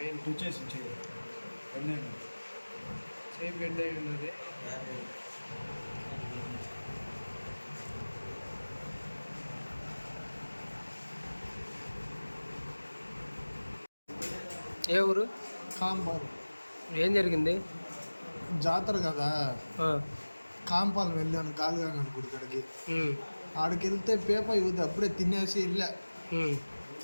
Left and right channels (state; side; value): inverted; both; correlation -1.00